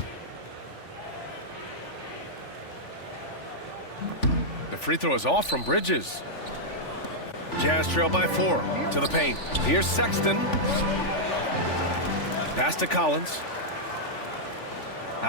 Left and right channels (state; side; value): late; right; 3.4 ms